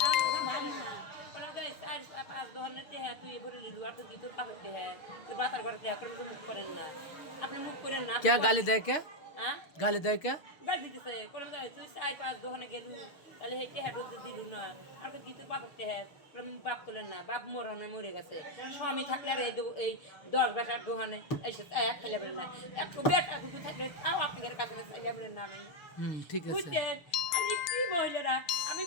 তুই ভরে লিলু আর তুই তোর বাপরতে হ্যাঁ তোর বাতার ঘরতে তো মুখ করেন না আপনি মুখ করেন না क्या गाली दे क्या गाली दे क्या গাল দিতেছে কোন তুই 4-5 দোকানে গেলু তাহলে হেঁটে হ্যাঁ দিলু না আর কি তোর বাপরতে হ্যাঁ বাপ করলেন না বাপ মরে গেছে স্বামী থাকলে আর এই 10 বেটার দোকানে এসে খেলে বেরেন না একটু বেটা দুটো থাকলে তাও আপনাদের কাছে চাইলে বেরেন না নাই ঠিক আছে বুঝছেন আমি কি মহিলারা আমি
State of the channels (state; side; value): late; right; 6.7 ms